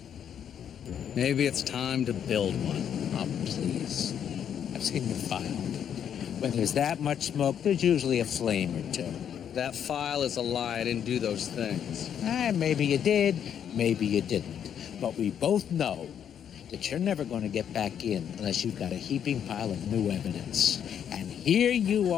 Maybe it's time to build one. Oh, please. I've seen your file. When there's that much smoke, there's usually a flame or two. That file is a lie. I didn't do those things. Maybe you did, maybe you didn't. But we both know that you're never going to get back in unless you've got a heaping pile of new evidence. And here you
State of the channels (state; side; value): quieter; right; 8.9 dB